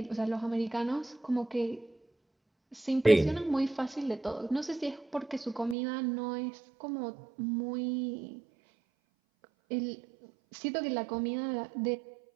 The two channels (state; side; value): drops out; left; at 5.8 s